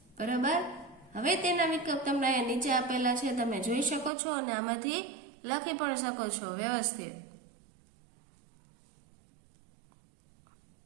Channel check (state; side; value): drops out; left; at 4.1 s